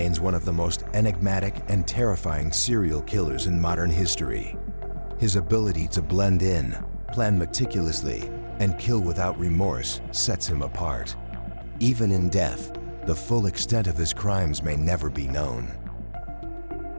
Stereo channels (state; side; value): inverted; both; correlation -1.00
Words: one of the most enigmatic and terrifying serial killers in modern history. His ability to blend in, plan meticulously, and kill without remorse sets him apart. Even in death, the full extent of his crimes may never be known.